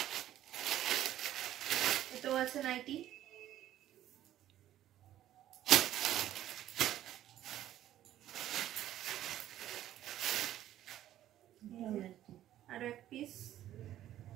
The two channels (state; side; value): quieter; left; 12.6 dB